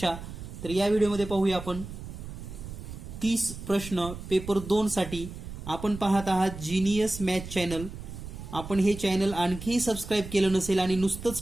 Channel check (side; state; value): right; noise; rumble, 11 dB below the sound